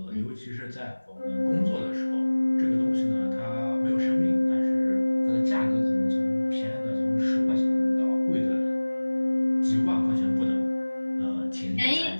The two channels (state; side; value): inverted; both; correlation -1.00